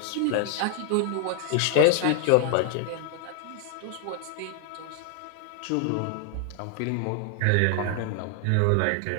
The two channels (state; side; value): different; both; correlation 0.00